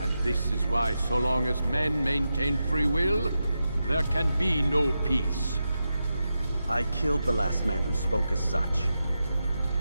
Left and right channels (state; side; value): inverted; both; correlation -0.89